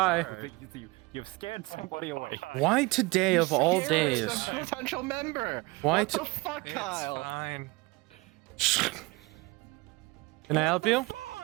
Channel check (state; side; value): quieter; left; 24.2 dB